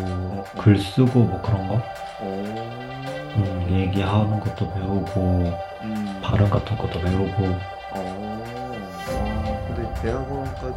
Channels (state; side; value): identical; both; correlation 1.00